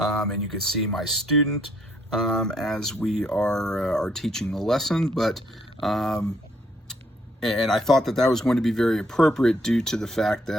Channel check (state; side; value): normal; both; correlation 0.69